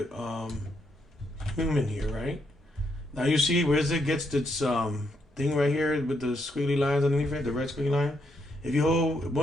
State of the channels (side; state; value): both; normal; correlation 0.77